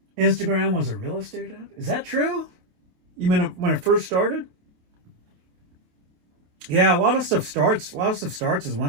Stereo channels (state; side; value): late; left; 28 ms